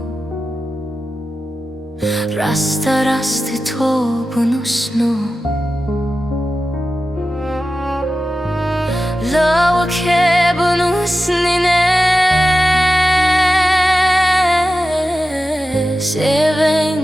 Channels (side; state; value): both; normal; correlation 0.93